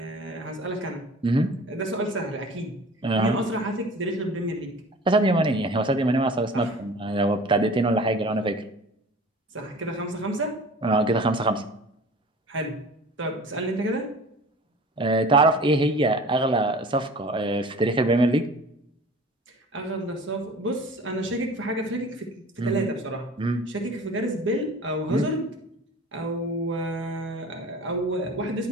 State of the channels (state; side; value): normal; both; correlation 0.42